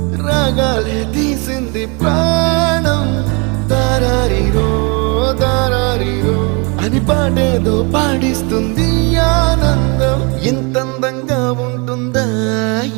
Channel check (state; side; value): quieter; left; 31.6 dB